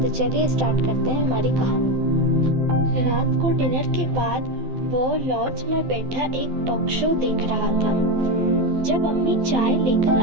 तो चलिए स्टार्ट करते हैं हमारी कहानी। रात को डिनर के बाद वो लॉज में बैठा एक टॉक शो देख रहा था जब अम्मी चाय लेकर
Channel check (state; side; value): late; left; 12 ms